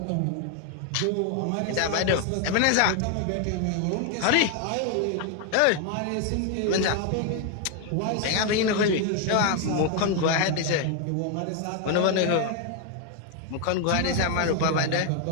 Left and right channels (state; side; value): different; both; correlation 0.00